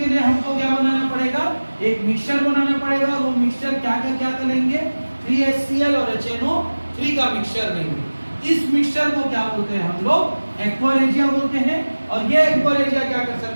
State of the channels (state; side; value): inverted; both; correlation -1.00